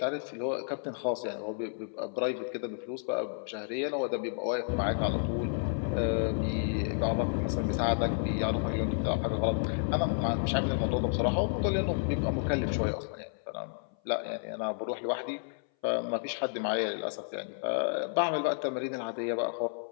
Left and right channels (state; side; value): silent; right; 57 dB below the other